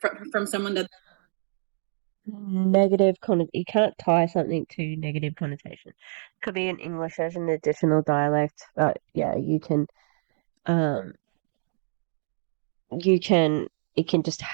from someone that negative you can't tie something to negative connotation. Could be in English as an additional dialect, but yeah, it can just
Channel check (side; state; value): left; silent; digital silence